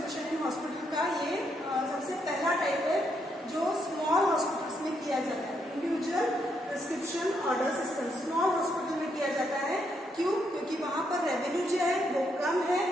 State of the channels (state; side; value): normal; both; correlation 0.77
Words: इन हॉस्पिटल का ये सबसे पहला टाइप है जो स्मॉल हॉस्पिटल्स में किया जाता है। Individual prescription order system small hospital में किया जाता है। क्यों? क्योंकि वहां पर रेवेन्यू जो है वो कम है,